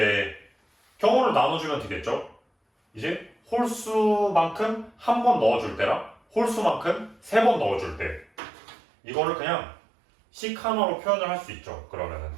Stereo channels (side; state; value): left; drops out; at 8.3 s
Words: 경우를 나눠주면 되겠죠. 이제 홀수만큼 한 번 넣어줄 때랑 홀수만큼 3번 넣어줄 때, 이거를 그냥 식 하나로 표현을 할 수 있죠. 그러면은